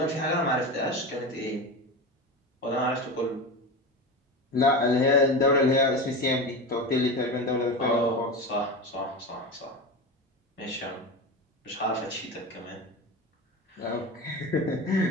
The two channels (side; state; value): both; normal; correlation 0.24